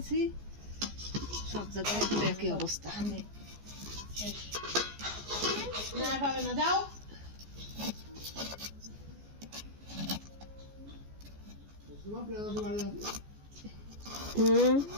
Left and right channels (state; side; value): late; left; 14 ms